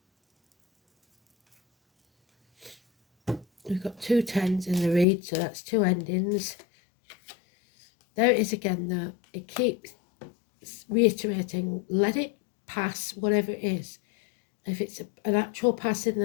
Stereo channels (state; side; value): drops out; right; at 5.1 s